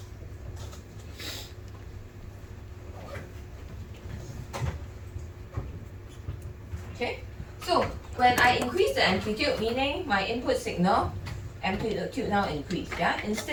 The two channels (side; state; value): both; identical; correlation 1.00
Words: Okay, so when I increase the amplitude, meaning my input signal amplitude now increase, yeah?